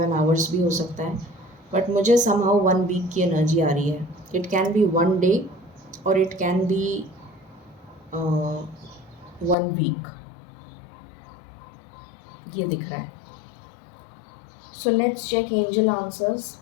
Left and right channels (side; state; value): right; drops out; at 9.6 s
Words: आवर्स भी हो सकता है, बट मुझे समहाउ 1 वीक की एनर्जी आ रही है। इट कैन बी 1 डे और इट कैन बी 1 वीक, ये दिख रहा है। So let's check angel answers,